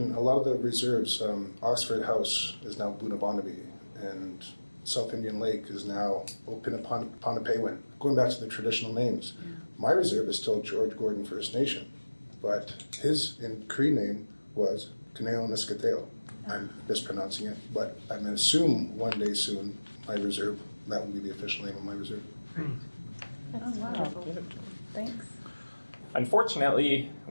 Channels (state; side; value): inverted; both; correlation -1.00